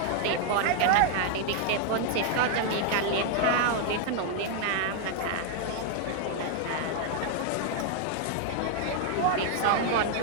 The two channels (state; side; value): different; both; correlation 0.00